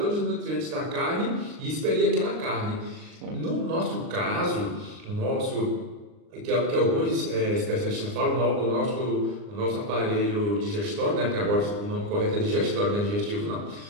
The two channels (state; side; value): late; left; 39 ms